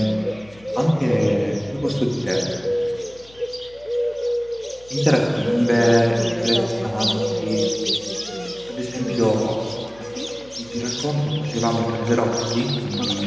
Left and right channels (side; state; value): left; noise; hum, 25 dB below the sound